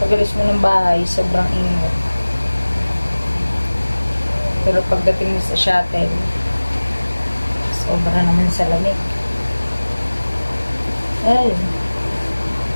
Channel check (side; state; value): both; inverted; correlation -1.00